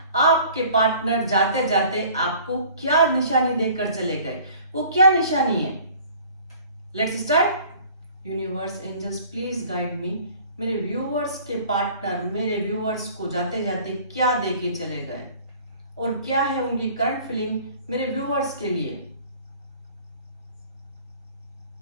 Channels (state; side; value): inverted; both; correlation -0.50